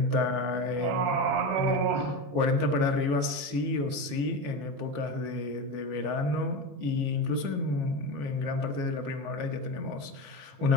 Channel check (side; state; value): left; late; 21 ms